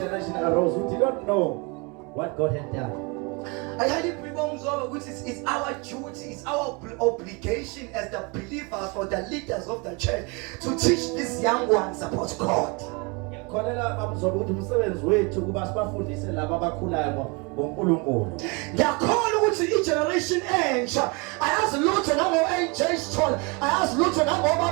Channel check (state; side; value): quieter; left; 29.0 dB